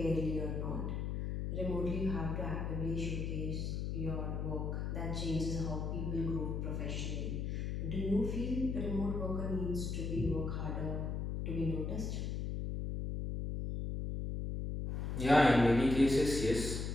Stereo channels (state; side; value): noise; left; hum, 2 dB below the sound